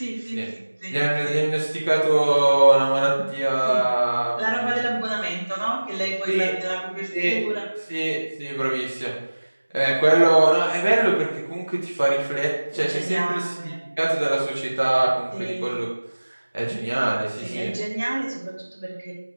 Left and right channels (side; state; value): both; inverted; correlation -1.00